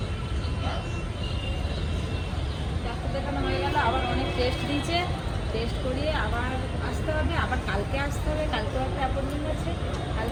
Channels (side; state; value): both; identical; correlation 1.00